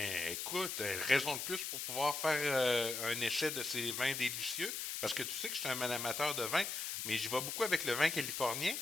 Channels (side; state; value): left; noise; hiss, 3 dB below the sound